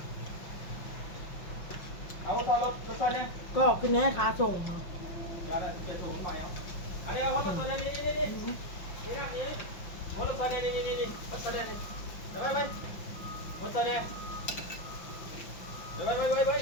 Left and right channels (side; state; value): right; late; 5.6 ms